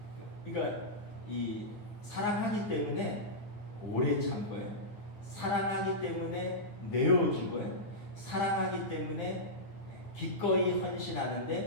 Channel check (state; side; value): late; right; 9.4 ms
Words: 그러니까 이 사랑하기 때문에 오래 참고요. 사랑하기 때문에 내어주고요. 사랑하기 때문에 기꺼이